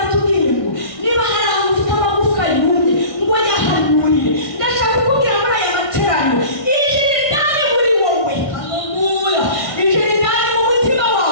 ngo niba hari ahantu ufite amagufwa yumye ngo yahanurire. Ndashaka kukubwira muri aya materaniro, ijiri ndani muri wowe, haleluya, ijiri ndani mu mutima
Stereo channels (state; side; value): late; right; 1.6 ms